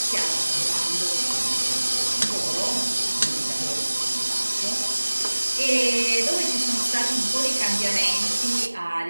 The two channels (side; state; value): both; inverted; correlation -1.00